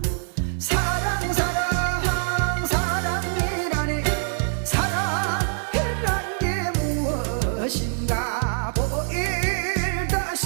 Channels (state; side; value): silent; left; 55 dB below the other